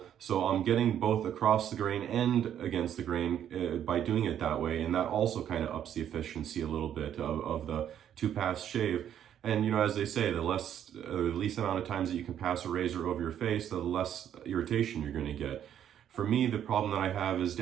so I'm getting both across the grain and against the grain by doing it that way, and that also kind of ups the efficiency a little bit of the 2-pass shave. And as they say, the least amount of times that you can pass a razor over your face, the less irritation you're going to get. For me, the problem that I have is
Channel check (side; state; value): left; quieter; 9.9 dB